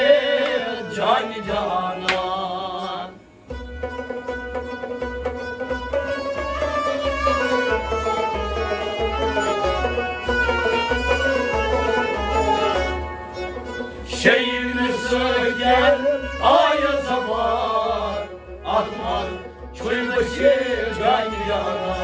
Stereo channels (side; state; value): both; identical; correlation 1.00